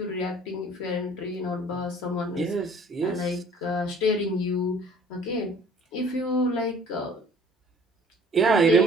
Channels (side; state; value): both; normal; correlation 0.53